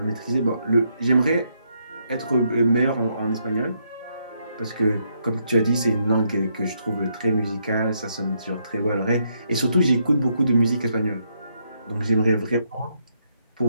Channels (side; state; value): both; inverted; correlation -0.77